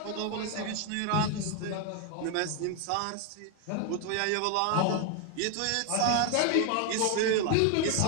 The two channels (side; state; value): both; different; correlation 0.01